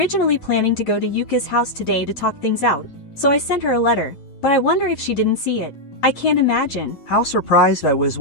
planning to go to Yuka's house today to talk things out, so I sent her a letter, but I wonder if she didn't see it. I can't imagine how surprised I was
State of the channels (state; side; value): late; right; 9.1 ms